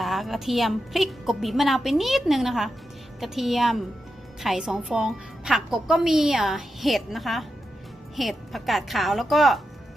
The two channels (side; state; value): both; normal; correlation 0.88